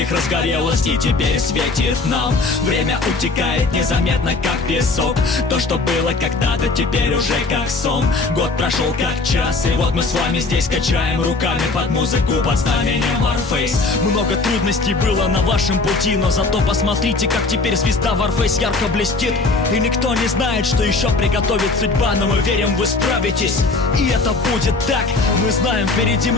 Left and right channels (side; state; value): right; quieter; 3.6 dB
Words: разгорелась и теперь светит нам. Время утекает незаметно, как песок. То, что было когда-то, теперь уже как сон. Год прошел как час, и вот мы с вами здесь качаем руками под музыку, под знаменем Warface. Много трудностей было на вашем пути, но зато посмотрите, как теперь звезда Warface ярко блестит. И никто не знает, что еще приготовит судьба, но мы верим, вы справитесь, и это будет так. Мы знаем, впереди